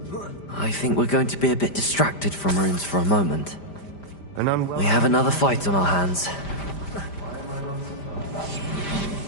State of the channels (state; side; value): late; right; 5.0 ms